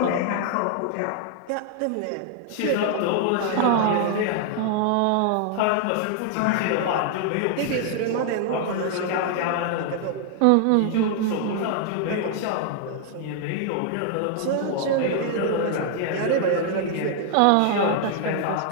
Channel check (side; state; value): both; different; correlation 0.00